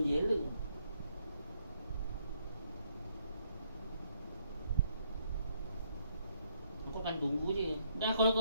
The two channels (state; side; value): inverted; both; correlation -0.71